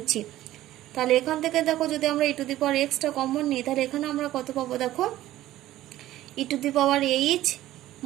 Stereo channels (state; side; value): quieter; left; 14.6 dB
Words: তাহলে এখান থেকে দেখো যদি আমরা ই টু দি পাওয়ার এক্সটা কমন নিই, তাহলে এখানে আমরা কত পাবো দেখো, e to the power h